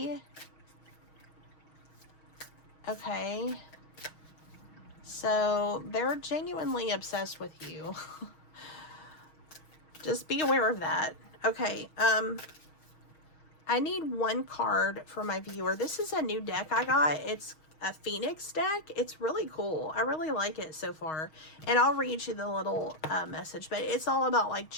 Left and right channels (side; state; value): right; late; 6.3 ms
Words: Okay. So they're genuinely obsessed with you. Just be aware of that. Okay. I need one card for my viewer. This is a new deck I got. It's a Phoenix deck. It's really cool. I really like it so far. And I'll read you the little message. But it's all about like